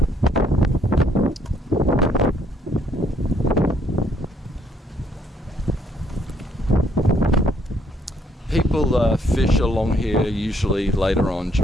People fish along here usually later on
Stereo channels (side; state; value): both; normal; correlation 0.68